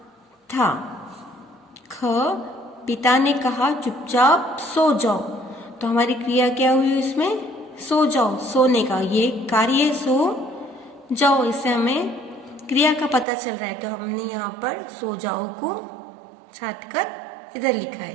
था। ख, पिता ने कहा चुपचाप सो जाओ। तो हमारी क्रिया क्या हुई इसमें? सो जाओ, सोने का। ये कार्य है सो जाओ। इससे हमें क्रिया का पता चल रहा है। तो हमने यहाँ पर सो जाओ को छांटकर इधर लिखा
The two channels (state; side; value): drops out; left; at 13.2 s